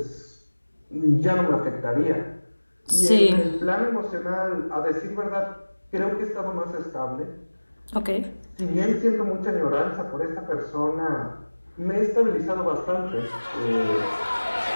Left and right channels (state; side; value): inverted; both; correlation -1.00